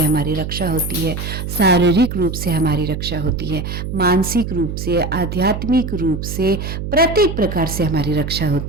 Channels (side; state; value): right; noise; hum, 5 dB below the sound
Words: हमारी रक्षा होती है, शारीरिक रूप से हमारी रक्षा होती है, मानसिक रूप से, आध्यात्मिक रूप से, प्रत्येक प्रकार से हमारी रक्षा